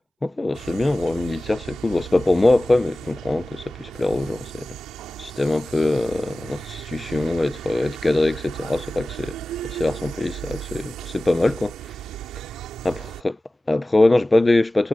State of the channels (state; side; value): normal; both; correlation 0.96